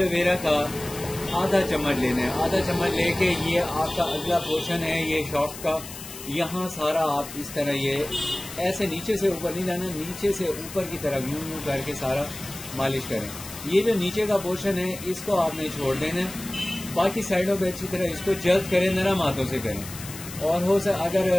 का आधा चम्मच लेना है. आधा चम्मच लेके ये आपका अगला पोर्शन है ये शॉफ्ट का, यहाँ सारा आप इस तरह ये ऐसे नीचे से ऊपर नहीं जाना, नीचे से ऊपर की तरफ यूं करके सारा मालिश करें. ये जो नीचे का पोर्शन है इसको आपने छोड़ देना है. बाकी साइडों पे अच्छी तरह इसको जल्द करें, नरम हाथों से करें. और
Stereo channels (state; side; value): noise; left; hiss, 12 dB below the sound